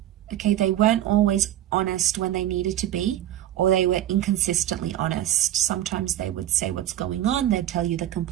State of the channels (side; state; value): left; quieter; 12.7 dB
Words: Okay, they weren't always honest when they needed to be, or they were inconsistently honest. Sometimes they would say what's going on, they'd tell you the